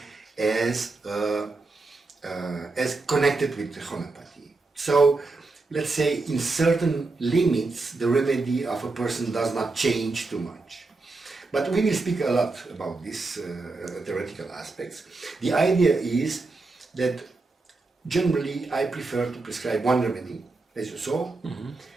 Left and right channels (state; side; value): quieter; left; 3.6 dB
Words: as connected with homeopathy. So, let's say in certain limits, the remedy of a person does not change too much. But we will speak a lot about these theoretical aspects. The idea is that generally I prefer to prescribe one remedy, as you saw,